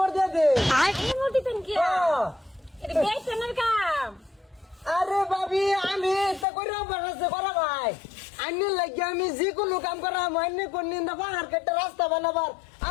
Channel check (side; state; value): right; drops out; at 6.5 s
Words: দিয়ে দে। এই মোটিতেন কি এটা বেশনের কাম। আরে ভাবি আমি এটা করে বানাচ্ছে করা ভাই আইনে লাগিয়ে আমি যে কোনো কাম করা মাইনে কোন নিন্দা পাহাড় কেটে রাস্তা বানাবার